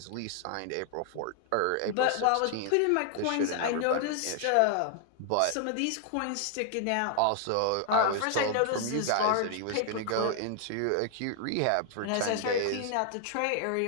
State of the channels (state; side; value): different; both; correlation 0.00